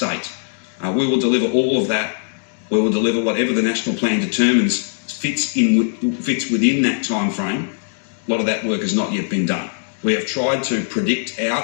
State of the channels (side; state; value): right; silent; digital silence